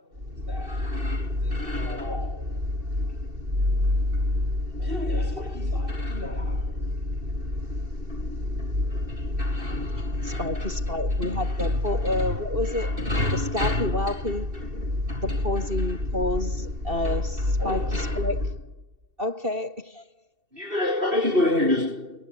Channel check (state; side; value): late; left; 2.7 ms